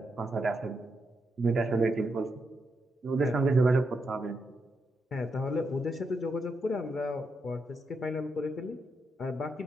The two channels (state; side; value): normal; both; correlation 0.83